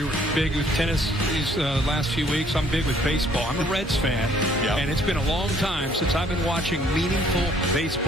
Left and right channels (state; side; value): normal; both; correlation 0.62